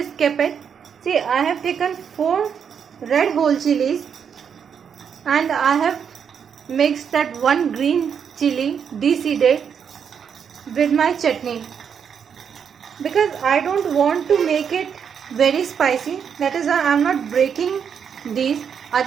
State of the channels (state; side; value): quieter; left; 7.4 dB